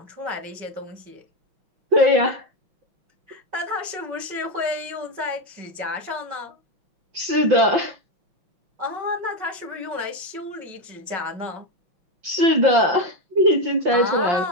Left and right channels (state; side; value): late; left; 5.8 ms